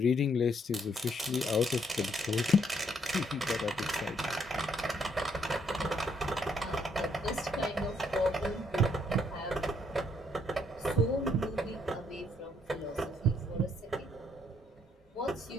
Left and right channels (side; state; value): both; normal; correlation 0.70